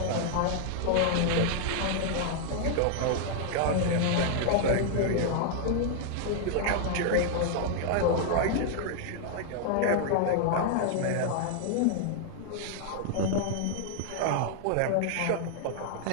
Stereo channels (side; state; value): both; different; correlation 0.00